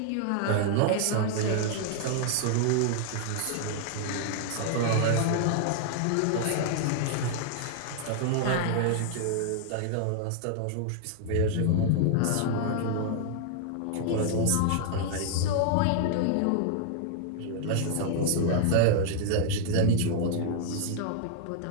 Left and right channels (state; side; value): different; both; correlation 0.00